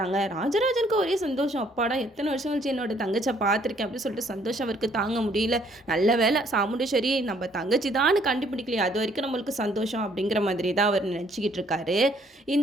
ராஜராஜனுக்கு ஒரே சந்தோஷம். அப்பாடா எத்தனை வருஷம் கழிச்சு என்னோட தங்கச்சை பார்த்துருக்கேன் அப்படின்னு சொல்லிட்டு சந்தோஷம் அவருக்கு தாங்க முடியல. நல்ல வேலை சாமுண்டேஸ்வரி நம்ம தங்கச்சி தான் கண்டுபிடிக்கலையே, அது வரைக்கும் நம்மளுக்கு சந்தோஷம் அப்படிங்கிற மாதிரி தான் அவர் நினச்சிக்கிட்டு இருக்காரு.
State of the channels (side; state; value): both; normal; correlation 0.64